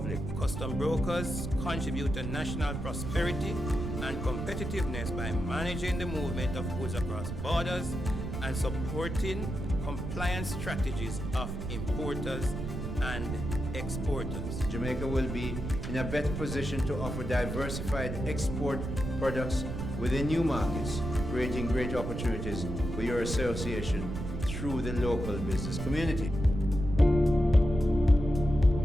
Custom brokers contribute to national prosperity and competitiveness by managing the movement of goods across borders and supporting compliance strategies of importers and exporters. Jamaica will be in a better position to offer diversified export products within new markets, creating great opportunities for your association through the local business community.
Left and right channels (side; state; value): right; noise; rumble, 5 dB below the sound